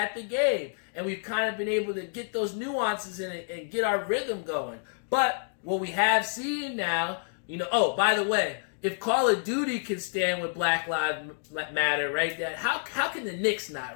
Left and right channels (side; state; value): right; silent; digital silence